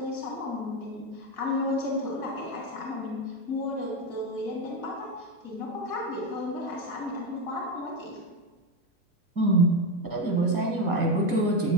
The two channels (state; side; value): late; left; 1.8 ms